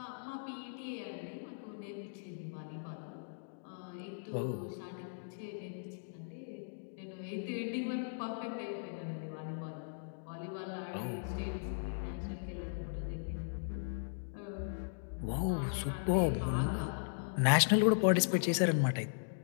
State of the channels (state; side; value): silent; right; digital silence